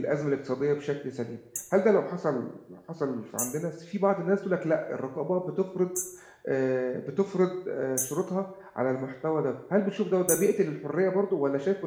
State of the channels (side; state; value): both; identical; correlation 1.00